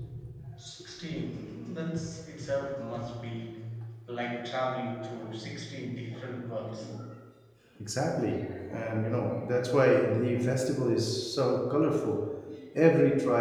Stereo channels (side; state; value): both; identical; correlation 1.00